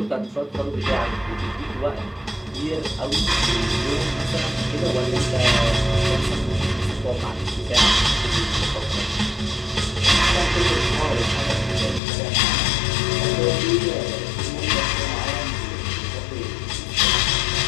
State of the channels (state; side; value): drops out; right; at 12.0 s